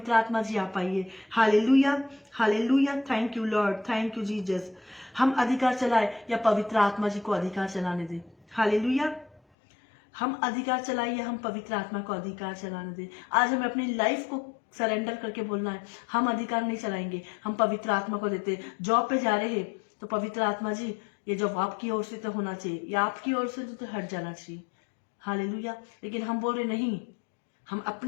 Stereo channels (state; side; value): drops out; right; at 9.4 s